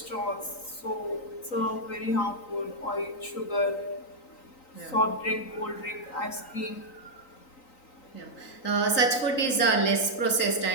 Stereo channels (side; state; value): right; late; 3.9 ms